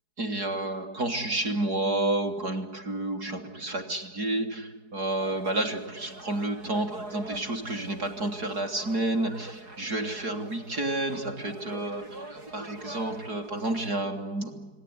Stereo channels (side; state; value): left; late; 4.7 ms